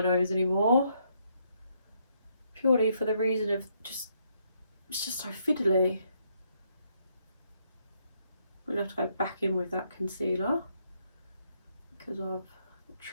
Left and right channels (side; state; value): both; inverted; correlation -0.74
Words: nose anymore, purely for the reason of just, it's just so fiddly. I'm gonna have to go back in with that concealer because I've